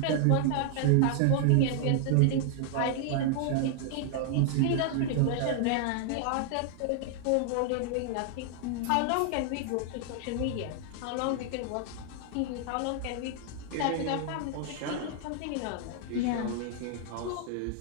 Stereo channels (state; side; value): different; both; correlation 0.00